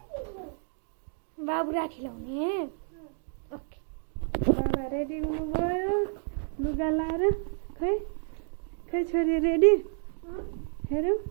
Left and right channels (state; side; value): silent; left; digital silence